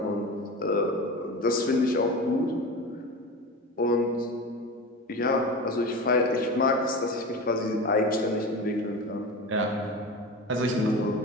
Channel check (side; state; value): both; normal; correlation 0.28